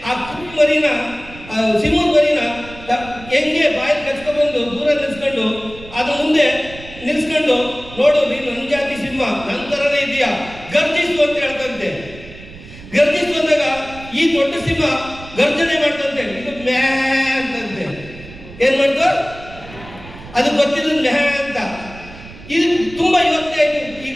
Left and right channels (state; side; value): noise; right; rumble, 17 dB below the sound